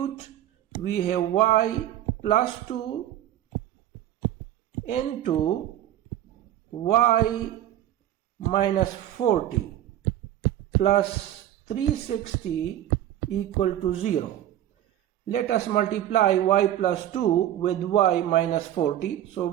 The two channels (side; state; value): left; quieter; 12.3 dB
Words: we have y plus 2 into y minus 40 plus 360 equal to 0. Let us multiply y plus 2 with y minus 40. So